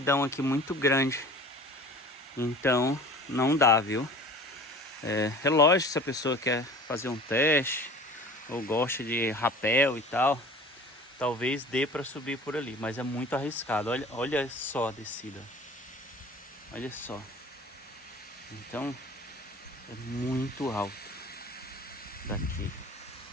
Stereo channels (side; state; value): both; normal; correlation 0.42